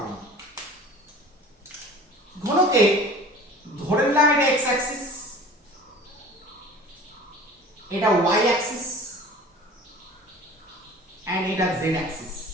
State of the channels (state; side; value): normal; both; correlation 0.42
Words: ঘনকে ধরে নিলাম এটা x অ্যাক্সিস, এটা y অ্যাক্সিস এন্ড এটা z অ্যাক্সিস।